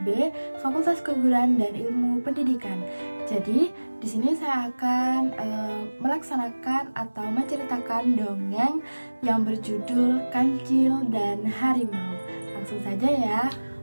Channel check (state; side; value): inverted; both; correlation -1.00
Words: B, Fakultas Keguruan dan Ilmu Pendidikan. Jadi, di sini saya akan melaksanakan atau menceritakan dongeng yang berjudul Kancil dan Harimau. Langsung saja ya.